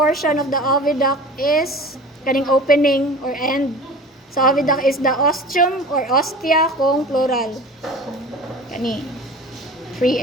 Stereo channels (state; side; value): normal; both; correlation 0.39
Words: of the oviduct is kaning opening or end. So oviduct is the ostium or ostia kung plural. Kani free